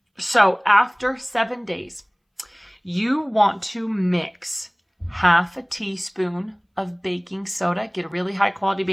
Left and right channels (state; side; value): identical; both; correlation 1.00